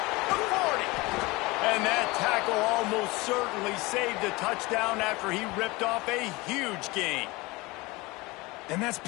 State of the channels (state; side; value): quieter; right; 23.0 dB